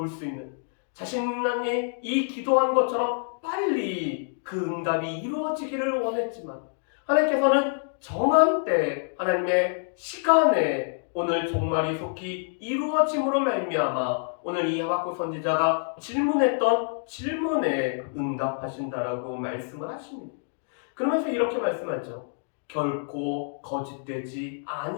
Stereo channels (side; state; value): right; silent; digital silence